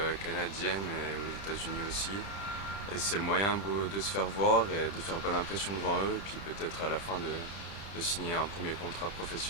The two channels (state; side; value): late; right; 30 ms